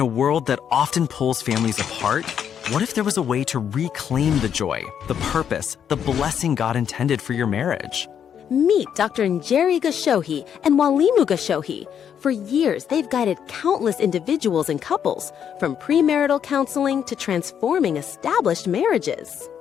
a world that often pulls families apart, what if there was a way to reclaim the joy, the purpose, the blessing God intended for your marriage? Meet Dr. Njeri Gashohi and Walimu Gashohi. For years, they've guided countless individuals and couples, from premarital counseling to transforming established marriages.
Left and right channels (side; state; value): right; quieter; 8.5 dB